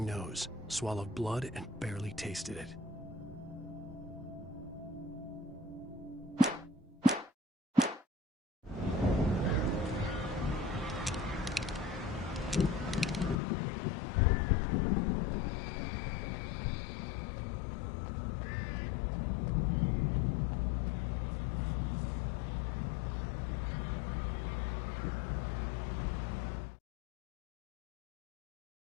nose, swallowed blood, and barely tasted it.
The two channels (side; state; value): right; drops out; at 13.4 s